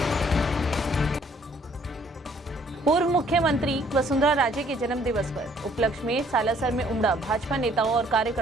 पूर्व मुख्यमंत्री वसुंधरा राजे के जन्म दिवस पर उपलक्ष्य में सालासर में उमड़ा भाजपा नेताओं और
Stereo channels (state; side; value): normal; both; correlation 0.62